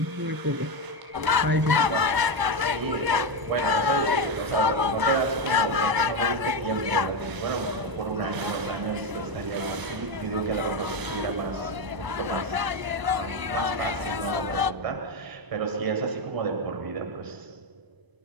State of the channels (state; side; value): late; left; 1.0 ms